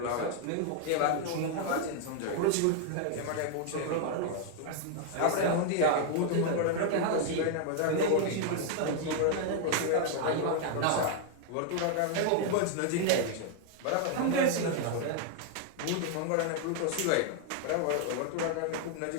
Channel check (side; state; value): both; different; correlation 0.00